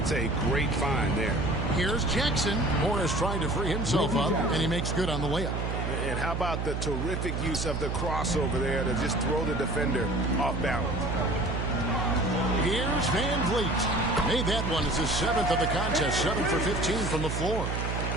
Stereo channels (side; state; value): right; noise; hum, 2 dB below the sound